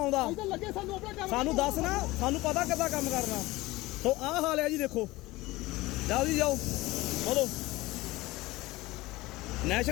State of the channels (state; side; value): quieter; right; 19.7 dB